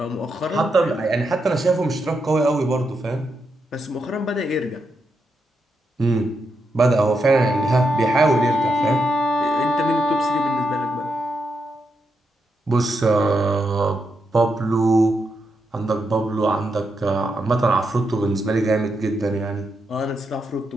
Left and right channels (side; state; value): both; normal; correlation 0.83